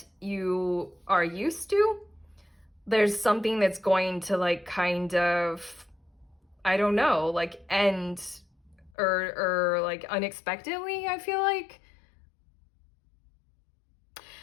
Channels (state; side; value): drops out; right; at 8.9 s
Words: you are used to. There's something that's going to like kind of, I don't know, like end or like unexpectedly, I feel like.